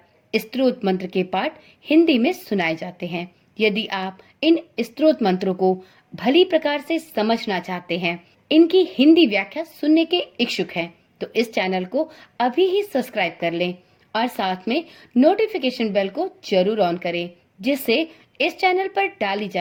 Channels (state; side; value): identical; both; correlation 1.00